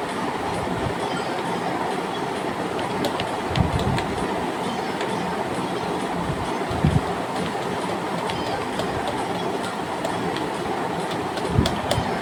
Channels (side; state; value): both; identical; correlation 1.00